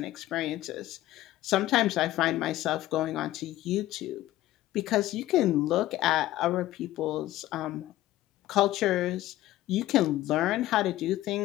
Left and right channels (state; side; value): quieter; right; 15.3 dB